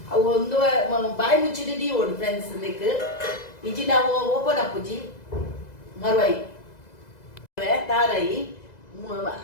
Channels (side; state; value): right; late; 2.0 ms